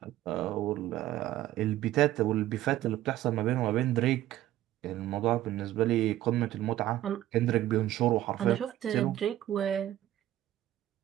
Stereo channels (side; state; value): left; quieter; 13.9 dB